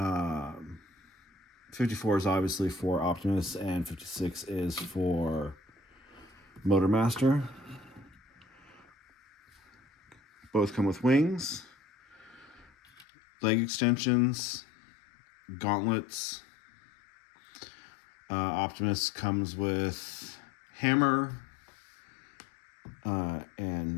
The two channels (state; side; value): drops out; right; at 13.1 s